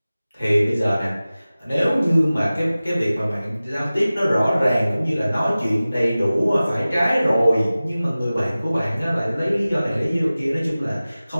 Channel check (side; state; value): both; inverted; correlation -0.97